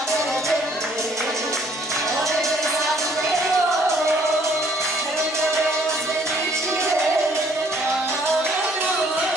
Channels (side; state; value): both; normal; correlation 0.62